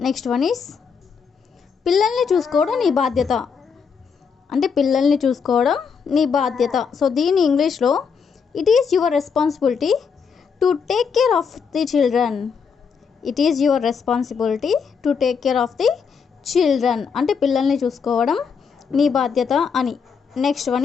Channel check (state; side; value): quieter; right; 6.1 dB